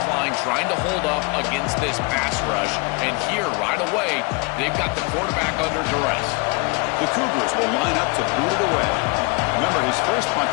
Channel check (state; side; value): quieter; right; 28.9 dB